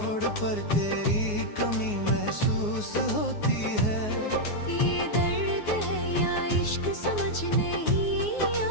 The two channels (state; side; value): late; right; 9.6 ms